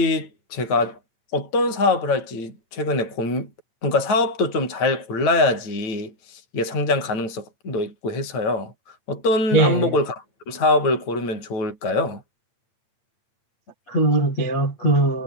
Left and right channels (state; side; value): late; right; 8.8 ms